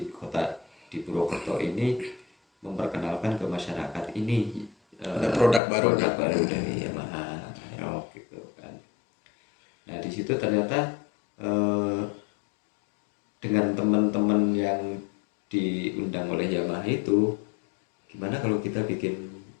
kota di Purwokerto ini memperkenalkan ke masyarakat ini ada produk baru dari Yamaha Aerox gitu kan. Nah di situ ternyata dengan teman-teman yang diundang oleh Yamaha itu gimana kalau kita bikin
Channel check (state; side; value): drops out; right; at 5.6 s